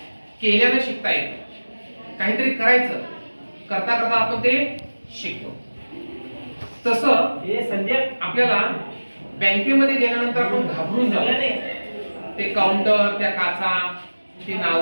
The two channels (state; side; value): inverted; both; correlation -1.00